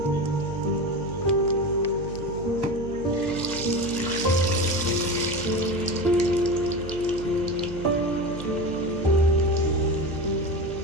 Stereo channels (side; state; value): right; noise; hum, 11 dB below the sound